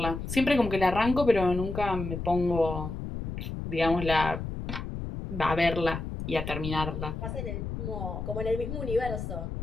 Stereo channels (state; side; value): noise; left; rumble, 6 dB below the sound